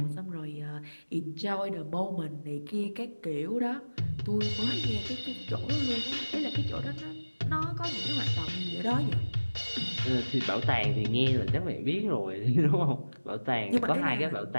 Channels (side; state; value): both; inverted; correlation -1.00